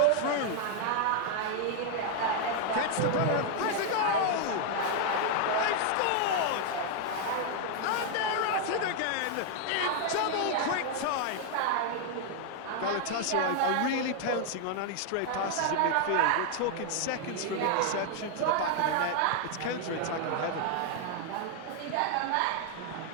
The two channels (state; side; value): different; both; correlation 0.00